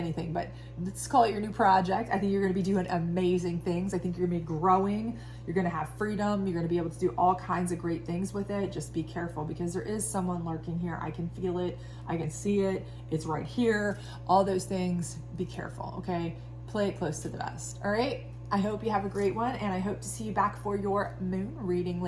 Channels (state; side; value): identical; both; correlation 1.00